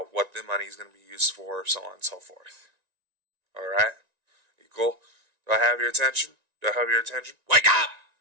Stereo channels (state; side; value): late; left; 1.9 ms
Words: what the money is going to be used for, so on and so forth. Alright? You cool? Do I have your attention? Do I have your attention? Wake up!